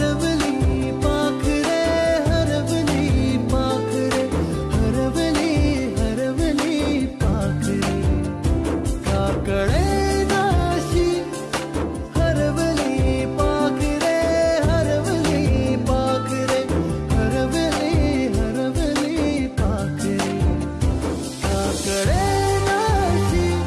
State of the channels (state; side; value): identical; both; correlation 1.00